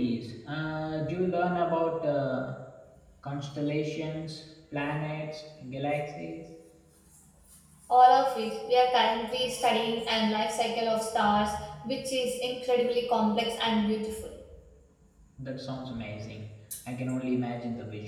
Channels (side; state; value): both; identical; correlation 1.00